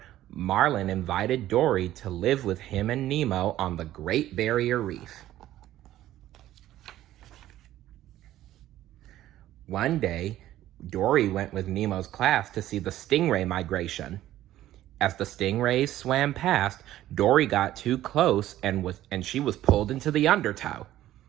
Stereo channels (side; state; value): left; quieter; 13.8 dB